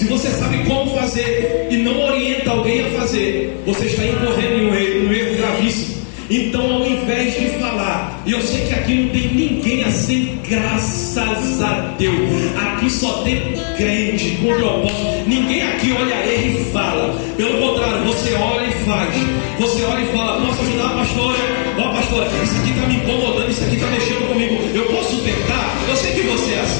você sabe como fazer e não orienta alguém a fazer, você está incorrendo em um erro gravíssimo. Então, ao invés de falar, e eu sei que aqui não tem ninguém assim, graças a Deus, aqui só tem crente com propósito. Ninguém aqui olha ele e fala. Pelo contrário, você olha e faz. Você olha e fala: posso ajudar a pastora? Ó, pastora, isso aqui está me incomodando, isso aqui está mexendo comigo. Eu posso tentar? Eu sei que você é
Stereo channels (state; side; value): silent; right; 65 dB below the other